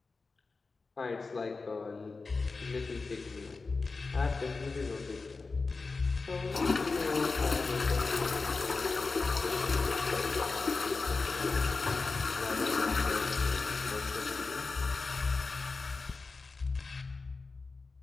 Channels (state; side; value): quieter; right; 4.1 dB